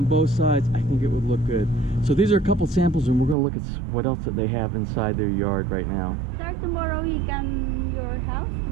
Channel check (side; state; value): left; drops out; at 3.4 s